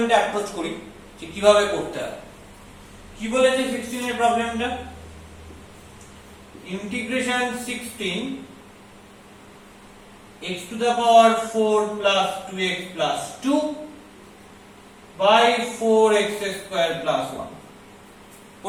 approach করি যে কিভাবে করতে হয়। কি বলেছে 16 এর প্রবলেমটা? Integration 16 x to the power 4 plus 2x plus 2 by 4x square plus 1.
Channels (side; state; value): both; identical; correlation 1.00